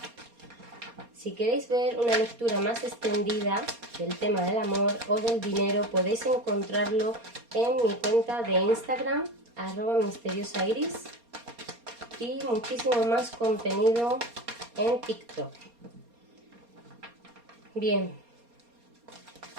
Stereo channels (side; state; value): left; late; 4.3 ms